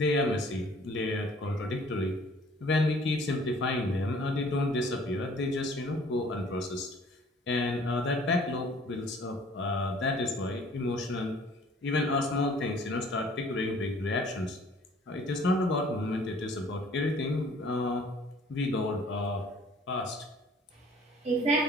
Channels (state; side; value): normal; both; correlation 0.54